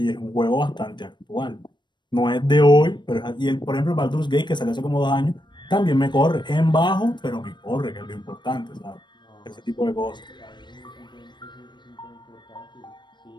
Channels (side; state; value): right; late; 0.22 ms